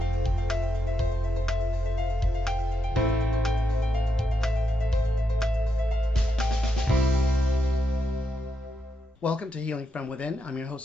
Welcome to Healing from Within. I'm your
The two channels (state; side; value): normal; both; correlation 0.83